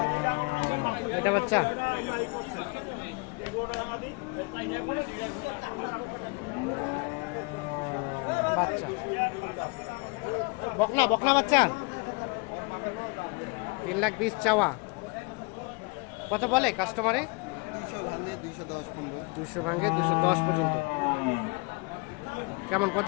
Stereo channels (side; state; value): right; quieter; 30.4 dB